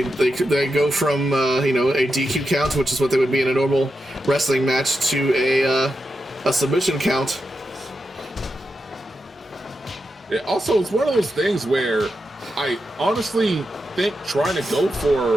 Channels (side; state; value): both; normal; correlation 0.88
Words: go from a DQ count, which is what they would be in a normal wrestling match, to a submission count. Yeah, also, it's one of those things where I honestly think trying to go